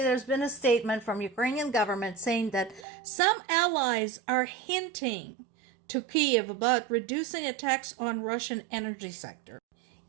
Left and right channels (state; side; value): drops out; left; at 2.9 s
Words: there's been a statement from Ukrainian government saying that some allies are hinting to Kyiv about reducing attacks on Russian energy sector.